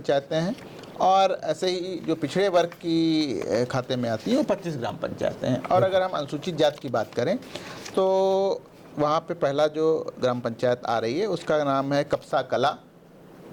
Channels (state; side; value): identical; both; correlation 1.00